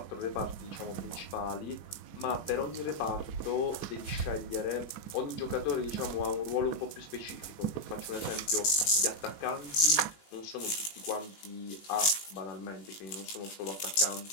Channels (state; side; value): late; right; 18 ms